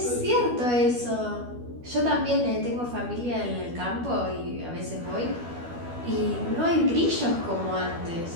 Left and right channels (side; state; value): left; late; 12 ms